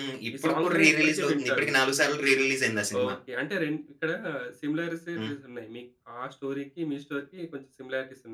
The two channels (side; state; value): both; identical; correlation 1.00